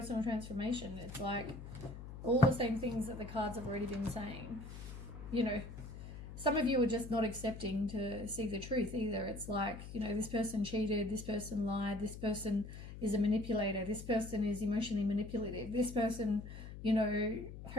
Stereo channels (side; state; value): left; noise; hum, 11 dB below the sound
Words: transformation. It's like all the same things that the cards have already been saying. Some of you are just not accepting to see the truth either. It's like, this person cheated, this person lied, this person is a manipulator, this person is emotionally manipulative, this person,